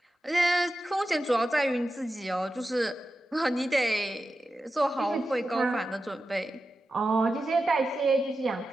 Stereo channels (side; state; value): both; normal; correlation 0.92